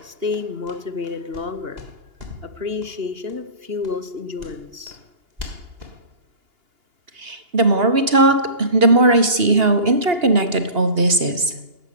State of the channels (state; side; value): late; left; 2.8 ms